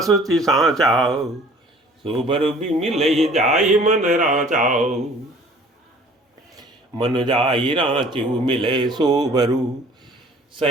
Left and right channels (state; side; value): normal; both; correlation 0.51